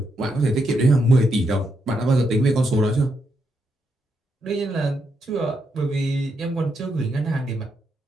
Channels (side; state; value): both; normal; correlation 0.80